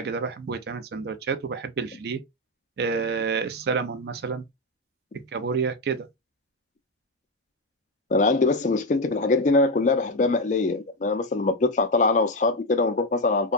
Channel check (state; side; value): normal; both; correlation 0.08